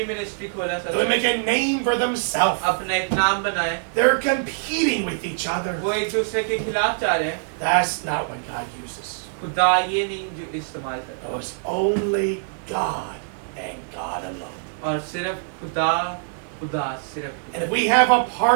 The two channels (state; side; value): silent; left; 58 dB below the other